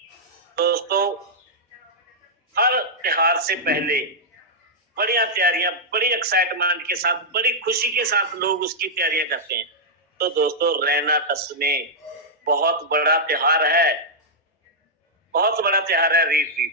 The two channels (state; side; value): normal; both; correlation -0.08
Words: दोस्तों हर त्योहार से पहले बढ़िया तैयारियां, बड़ी एक्साइटमेंट के साथ, बड़ी खुशी के साथ लोग उसकी तैयारियां करते हैं। तो दोस्तों रैना टस में बहुत बड़ा त्योहार है, बहुत बड़ा त्योहार है